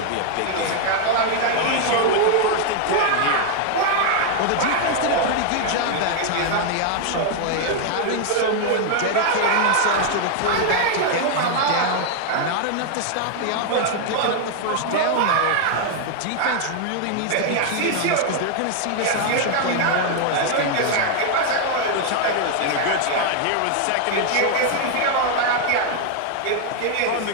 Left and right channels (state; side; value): different; both; correlation 0.00